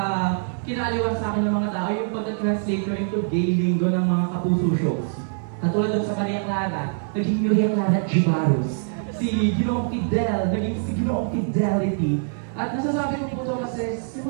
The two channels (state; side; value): silent; left; 63 dB below the other